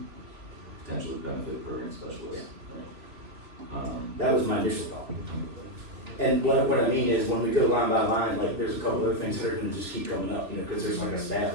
potentially benefit program specialist. That was my initial thought. And what I mean is when we go line by line, like there's a couple other things that are gonna just keep coming up, you know, cause there's like a staff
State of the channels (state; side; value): late; left; 2.8 ms